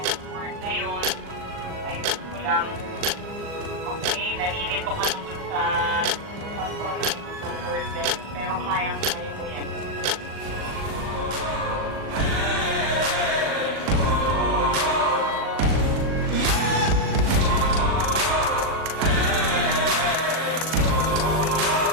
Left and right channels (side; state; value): left; late; 39 ms